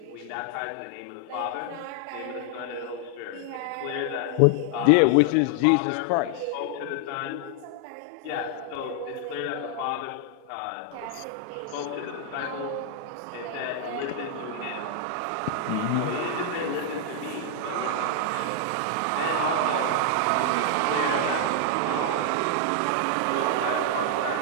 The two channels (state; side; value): different; both; correlation 0.00